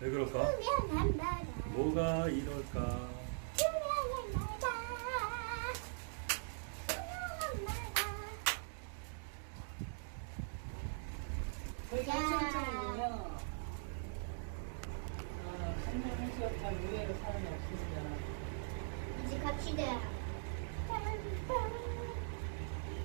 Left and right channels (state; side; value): silent; left; digital silence